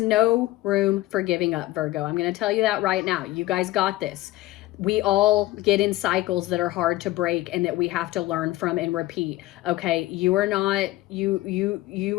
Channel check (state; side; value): quieter; right; 17.6 dB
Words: room for giving up, Virgo. I'm going to tell you that right now. You guys got this. We all get in cycles that are hard to break and that we have to learn from and repeat. Okay, you are not,